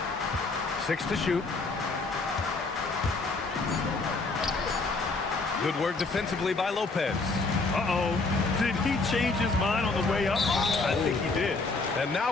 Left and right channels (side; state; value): right; quieter; 3.7 dB